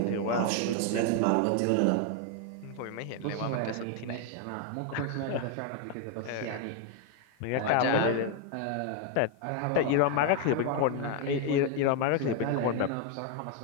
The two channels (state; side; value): different; both; correlation 0.01